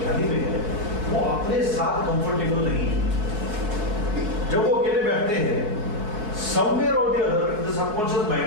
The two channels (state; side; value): late; left; 4.7 ms